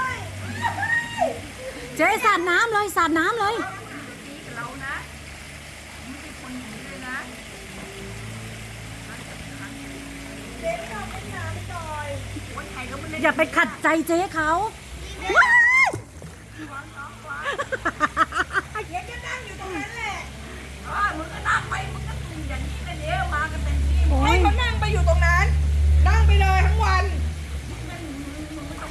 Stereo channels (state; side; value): identical; both; correlation 1.00